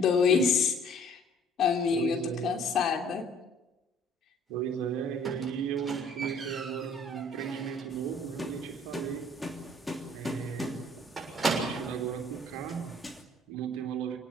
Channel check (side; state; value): both; normal; correlation 0.56